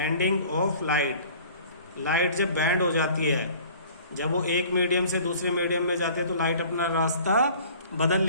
light. लाइट जब बेंड हो जाती है, जब वो एक मीडियम से दूसरे मीडियम में जाते हैं तो लाइट अपना रास्ता बदल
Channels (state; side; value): inverted; both; correlation -0.48